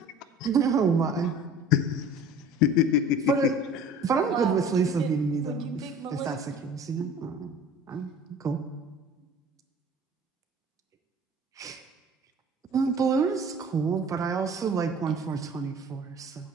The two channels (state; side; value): normal; both; correlation 0.44